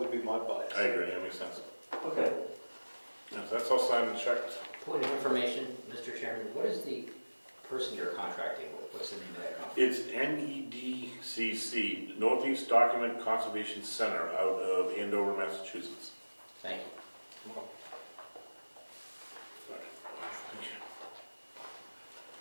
be my bias. I agree, that makes sense. okay. Yeah, so that's all signed and checked. Point of information, Mr. Chairman, what is the person you're contracting with? What's the name of that company? It's NEDCC, Northeast Document Conservation Center, out of Andover, Massachusetts. Thank you.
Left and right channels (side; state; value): both; inverted; correlation -1.00